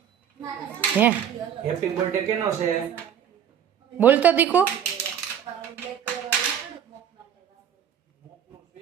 હે હેપી બર્થડે કેનો છે? બોલ તો દીકુ.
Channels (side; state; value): left; quieter; 9.0 dB